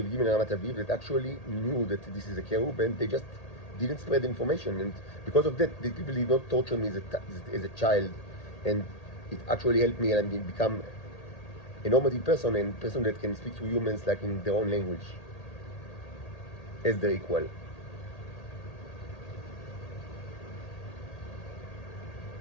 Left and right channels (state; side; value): late; right; 1.8 ms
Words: Aviv and Ramat Aviv that actually knew that this is a cherub, and they just didn't spread information. And because of that, the people did not torture me as a child, and it actually helped me and become a normative person and person that can speak to humans like in their own language as their equal.